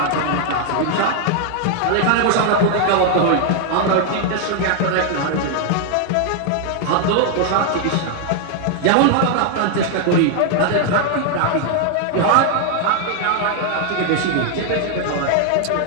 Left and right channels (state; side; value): different; both; correlation 0.00